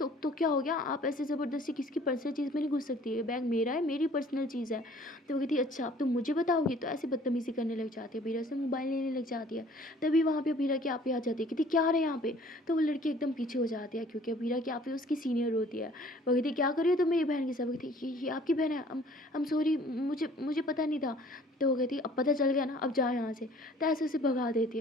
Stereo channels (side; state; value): both; normal; correlation 0.54